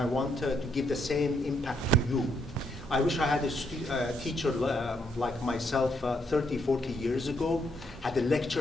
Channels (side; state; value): both; normal; correlation 0.75